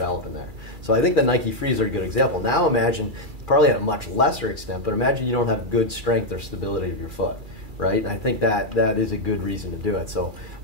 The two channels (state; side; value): late; left; 2.4 ms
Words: in there? So I think the Nike Frees are a good example. Now imagine, probably at a much lesser extent, but imagine you don't have good strength or stability of your foot, right? And I think that is a good reason to do it. So